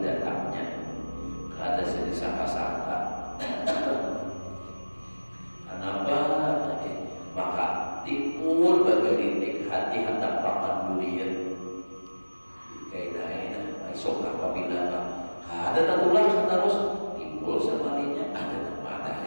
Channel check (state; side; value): inverted; both; correlation -1.00